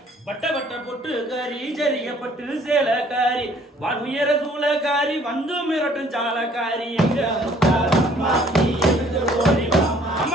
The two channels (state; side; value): normal; both; correlation 0.59